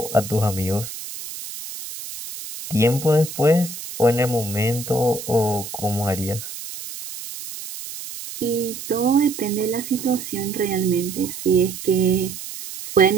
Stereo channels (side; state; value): right; noise; hiss, 10 dB below the sound